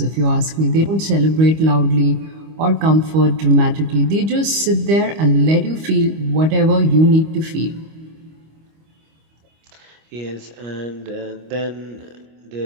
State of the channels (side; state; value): left; late; 25 ms